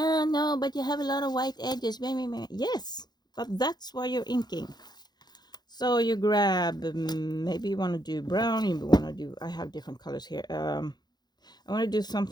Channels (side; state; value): right; late; 0.20 ms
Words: but you have a lot of white edges. Yes, but that's why you're inking. So you grab, maybe you want to do brown, you want to do, I have different colors here. I want to do